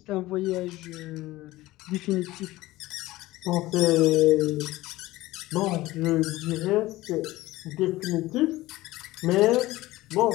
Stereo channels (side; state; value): right; quieter; 17.8 dB